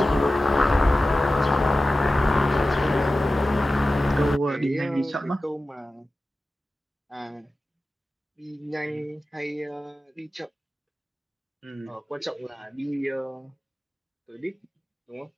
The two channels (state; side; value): normal; both; correlation 0.95